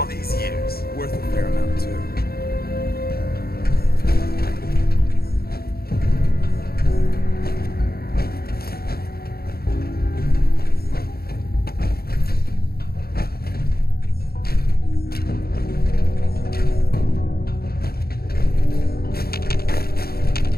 these years. Worth a fair amount, too.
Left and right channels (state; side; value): late; right; 0.45 ms